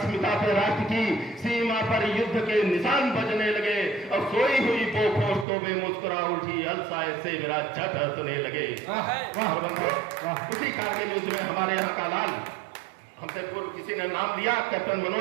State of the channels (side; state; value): left; drops out; at 5.5 s